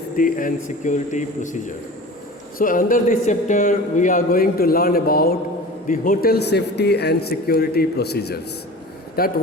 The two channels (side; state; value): both; normal; correlation 0.37